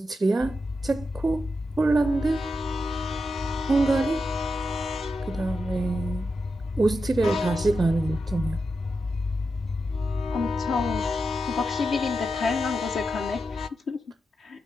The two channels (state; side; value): normal; both; correlation 0.88